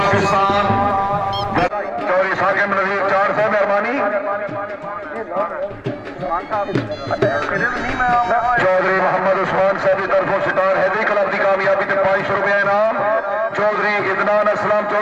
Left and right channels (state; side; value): identical; both; correlation 1.00